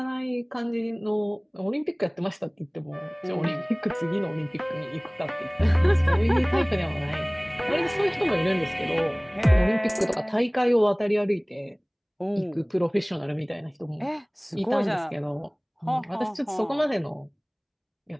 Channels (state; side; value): identical; both; correlation 1.00